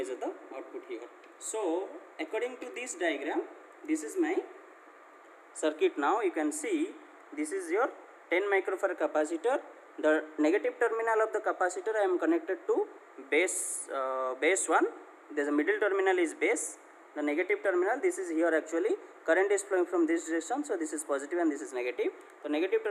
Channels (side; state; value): both; identical; correlation 1.00